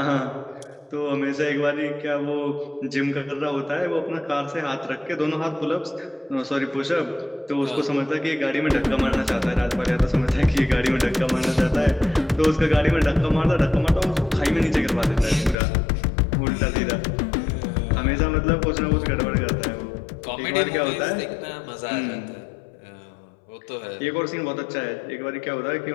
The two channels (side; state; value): right; drops out; at 15.6 s